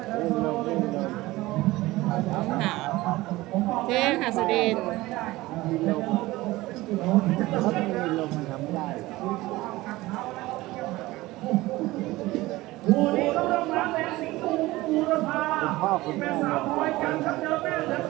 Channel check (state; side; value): quieter; left; 18.9 dB